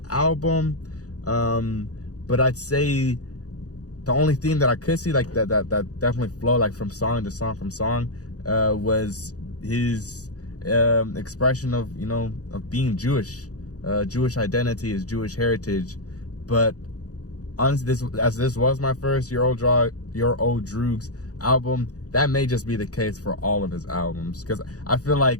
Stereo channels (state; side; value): late; right; 0.67 ms